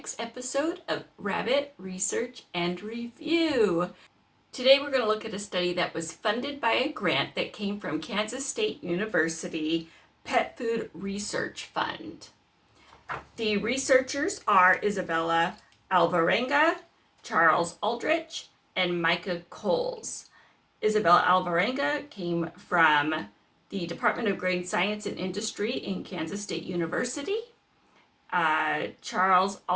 episode of Rabbit Research and Review. Today we're going to look at a study that was funded by a grant that came from Kansas State University Pet Food Research Fund. The researchers are Isabella Alvarenga, Charles Aldrich, and Micah Coles. Isabella Alvarenga came from the Department of Grain Science and Industry in Kansas State University. Charles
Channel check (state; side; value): identical; both; correlation 1.00